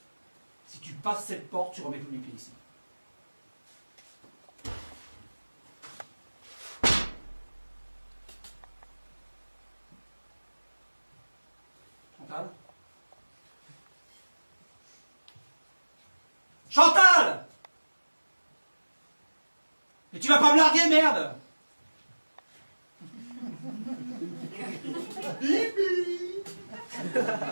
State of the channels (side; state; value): both; inverted; correlation -1.00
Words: Si tu passes cette porte, tu remets plus les pieds ici. Chantal? Chantal! Mais tu vas pas me larguer, merde! Bibi.